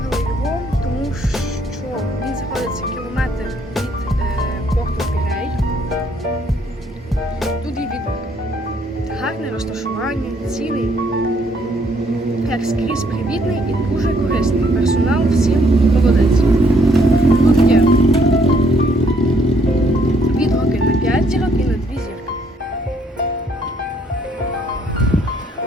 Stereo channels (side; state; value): both; normal; correlation 0.67